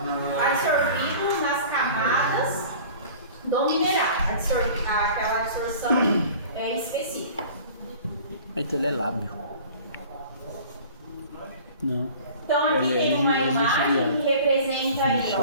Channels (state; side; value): inverted; both; correlation -0.44